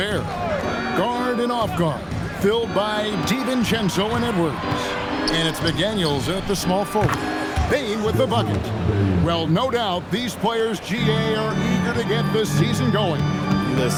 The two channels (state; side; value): identical; both; correlation 1.00